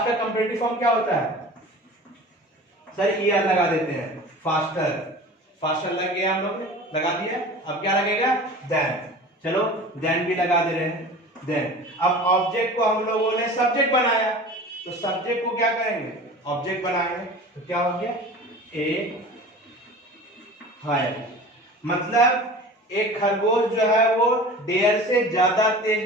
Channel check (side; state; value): both; normal; correlation 0.39